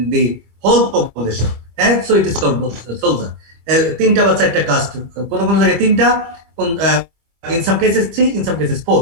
whole population, and so it is called soldier. তিনটা বা চারটা কাস্ট, কোন জায়গায় তিনটা, in some cases 3, in some cases 4.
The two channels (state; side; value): late; left; 25 ms